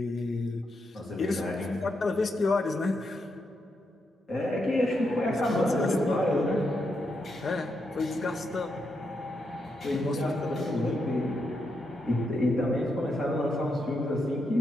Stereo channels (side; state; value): both; normal; correlation 0.82